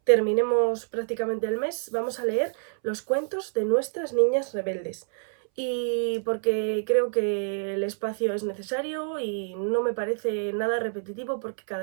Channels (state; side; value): silent; left; 60 dB below the other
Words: terminemos prácticamente el mes vamos a leer los cuentos de nuestras niñas rebeldes. Y porque creo que el espacio es necesario y no me parece nada repetitivo porque